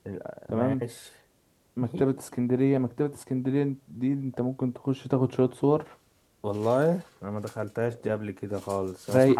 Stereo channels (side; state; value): both; identical; correlation 1.00